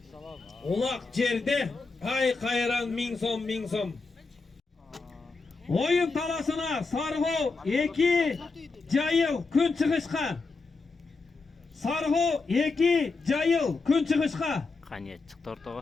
Улак жерде ай кайран 1000 сом. Оюн таласына Сарго 2 Жайыл күн чыгышка. Сарго 2 Жайыл күн чыгышка. Кане чыкты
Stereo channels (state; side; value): quieter; right; 4.0 dB